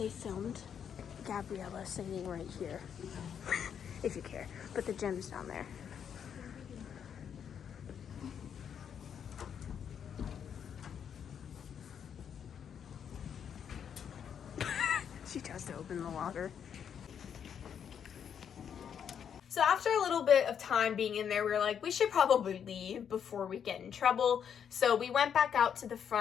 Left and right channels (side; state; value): right; quieter; 8.1 dB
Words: filmed Gabriella singing right here, if you care, but the gym's down there. She tries to open the water. So after a little bit of time being in there, we were like, we should probably leave before we get in trouble. So we went back out to the